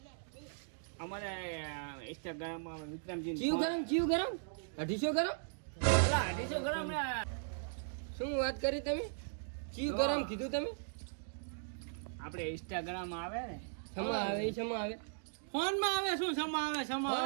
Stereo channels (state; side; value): silent; left; digital silence